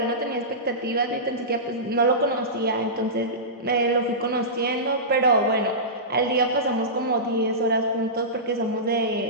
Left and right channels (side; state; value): both; normal; correlation -0.19